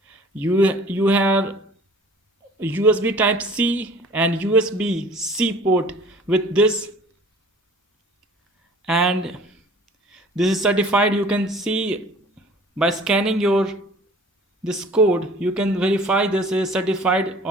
you have USB type C and USB C port with this, and this is certified. You can see by scanning your this code, you can verify this is certified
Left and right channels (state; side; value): normal; both; correlation 0.49